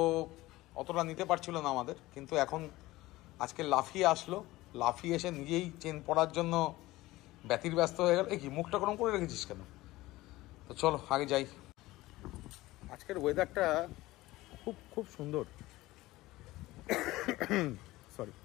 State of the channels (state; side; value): quieter; right; 18.3 dB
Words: অতটা নিতে পারছিল না আমাদের, কিন্তু এখন আজকে লাফিয়ে আসলো। লাফিয়ে এসে নিজেই চেন পড়ার জন্য ব্যতির ব্যস্ত হয়ে গেল। কি মুখটা গরম করে রেখেছিস কেন? তো চলো আগে যাই। আজকের ওয়েদারটা খুব খুব সুন্দর। সরি,